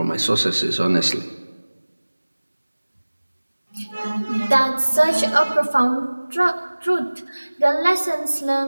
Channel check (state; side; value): inverted; both; correlation -1.00